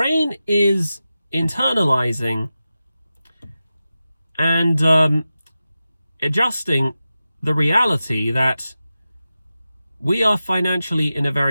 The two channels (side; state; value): both; inverted; correlation -0.93